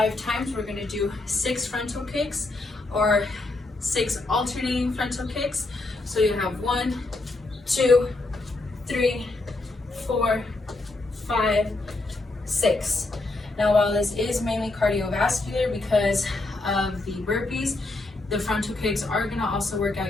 times, we're going to do 6 frontal kicks or 6 alternating frontal kicks. So you have 1, 2, 3, 4, 5, 6. Now while this is mainly cardiovascular because of the burpees, the frontal kicks are going to also work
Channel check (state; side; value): quieter; right; 3.1 dB